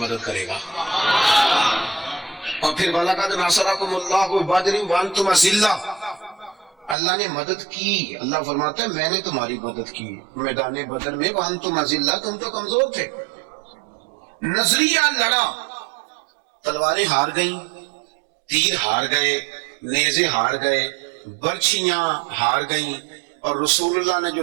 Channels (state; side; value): drops out; left; at 7.0 s